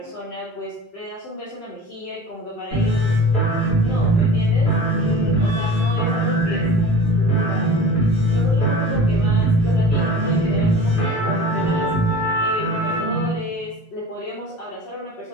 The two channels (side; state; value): both; normal; correlation 0.39